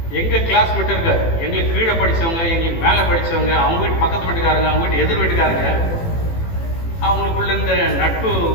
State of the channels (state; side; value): late; right; 18 ms